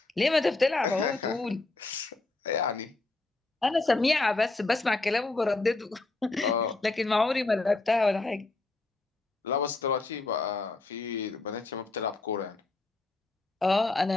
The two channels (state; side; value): quieter; right; 3.2 dB